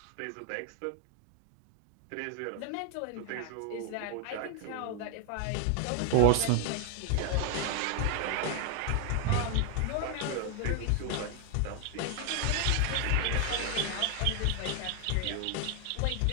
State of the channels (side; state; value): both; different; correlation 0.00